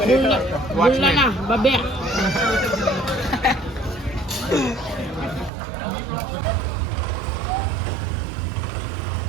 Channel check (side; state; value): left; drops out; at 5.5 s